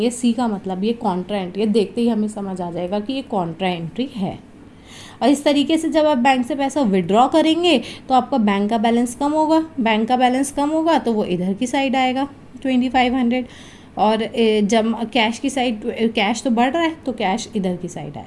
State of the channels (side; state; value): both; identical; correlation 1.00